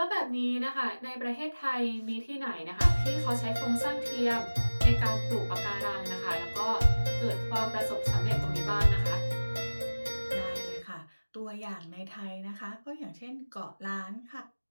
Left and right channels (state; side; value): inverted; both; correlation -1.00